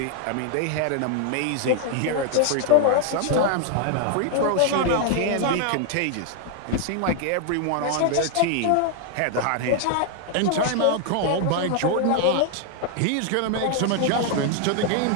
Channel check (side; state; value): both; different; correlation 0.00